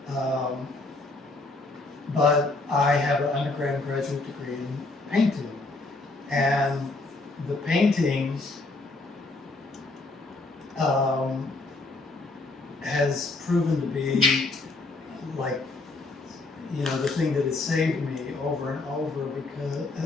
But I have an undergrad and graduate degree in painting. And the painting has proven to be the thing that has saved me over and over, because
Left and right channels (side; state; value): right; quieter; 3.3 dB